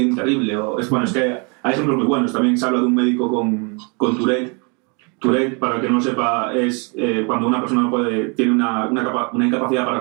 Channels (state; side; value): quieter; left; 33.7 dB